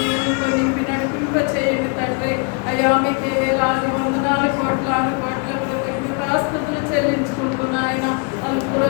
నింపి నడిపింప చేయండి తండ్రి. అయ్యా మీకు వేలాది వందనాలు కోట్లాను కోట్ల కృతజ్ఞతాస్తుతులు చెల్లించుకుంటున్నాయన.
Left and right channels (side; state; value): right; quieter; 34.3 dB